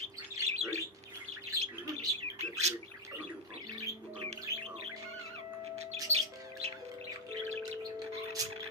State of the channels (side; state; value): both; normal; correlation 0.02